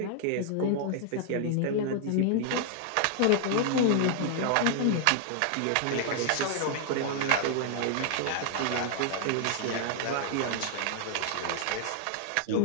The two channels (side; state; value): both; different; correlation 0.00